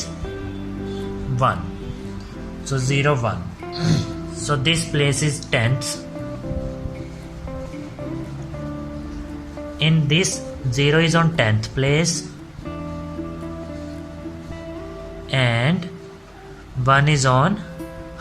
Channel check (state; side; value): identical; both; correlation 1.00